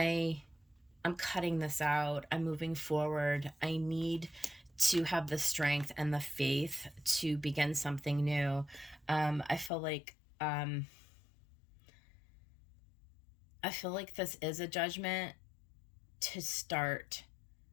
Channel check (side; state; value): right; drops out; at 9.7 s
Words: I'm cutting this out. I'm moving forward. I need to have the strength and the faith to begin something new. I feel like this is a judgment to start